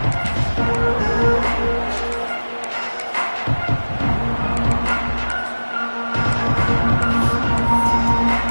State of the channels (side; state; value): both; inverted; correlation -1.00